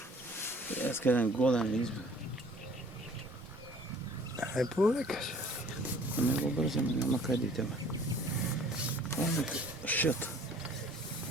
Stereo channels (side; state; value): both; normal; correlation 0.52